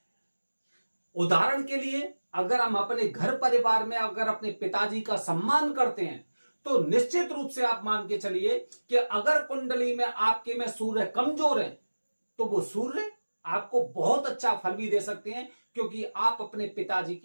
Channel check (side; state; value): both; inverted; correlation -1.00